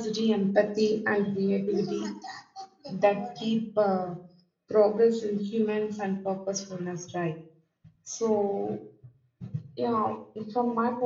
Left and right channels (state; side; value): identical; both; correlation 1.00